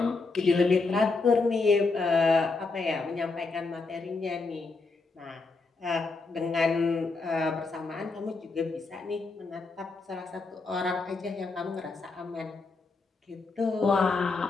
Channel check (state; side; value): quieter; right; 3.9 dB